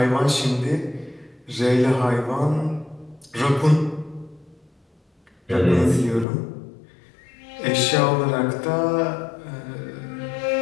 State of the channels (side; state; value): right; drops out; at 6.2 s